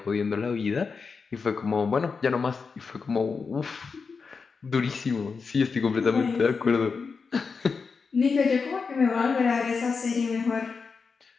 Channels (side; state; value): right; quieter; 5.1 dB